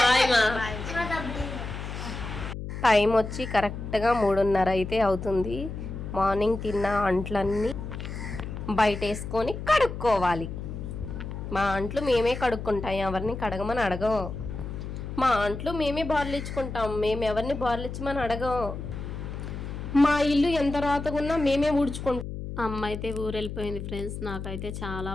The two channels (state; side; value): noise; left; hum, 7 dB below the sound